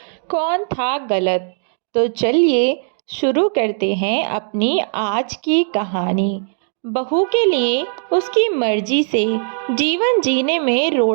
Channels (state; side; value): silent; left; digital silence